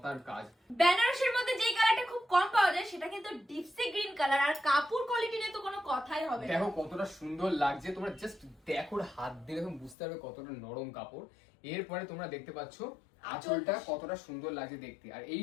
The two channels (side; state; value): right; drops out; at 10.0 s